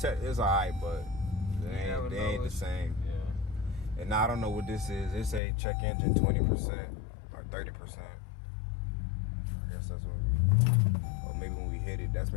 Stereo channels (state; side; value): drops out; right; at 5.4 s